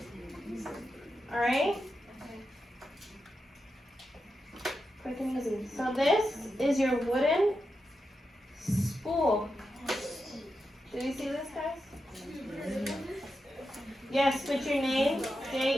Alright? Quick and easy. So this is your wooden spool. Do you see this, guys? Yes, put your name,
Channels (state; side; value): normal; both; correlation 0.88